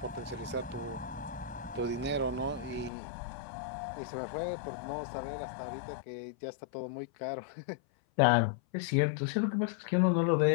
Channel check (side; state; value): right; drops out; at 2.9 s